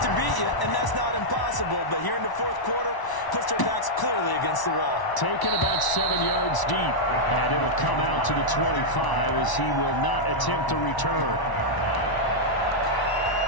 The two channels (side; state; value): right; late; 1.0 ms